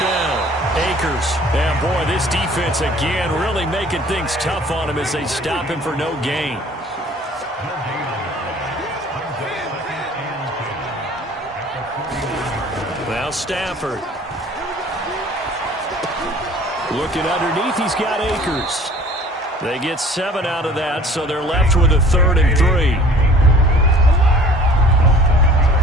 down. Akers. And boy, this defense again really making things tough on him as they stop him for no gain. Now Stafford. Looking underneath, he's got Akers. They get 7 out of that, so they're left with a 3rd and 3.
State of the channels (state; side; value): normal; both; correlation 0.50